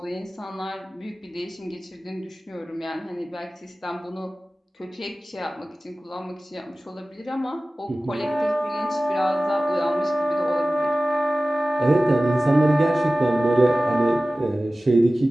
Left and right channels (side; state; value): both; normal; correlation 0.97